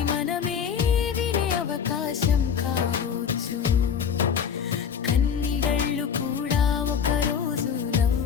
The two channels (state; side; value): quieter; right; 7.3 dB